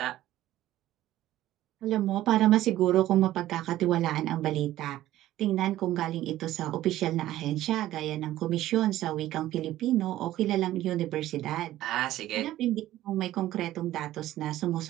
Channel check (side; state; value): left; quieter; 14.4 dB